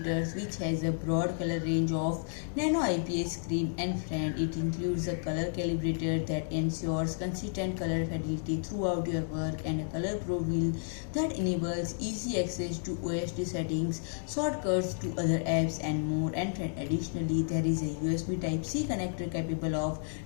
which has a broad color range of Nano IPS screen, and friend, it includes a color calibrator that ensures consistent color fidelity throughout your work, and a ColorPro wheel that enables easy access to OSD settings, shortcuts to other apps and more. And friend, additionally there is a USB Type-C connector capable of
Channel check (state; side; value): silent; right; digital silence